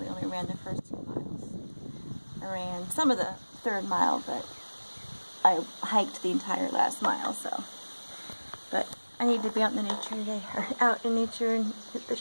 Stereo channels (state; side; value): inverted; both; correlation -1.00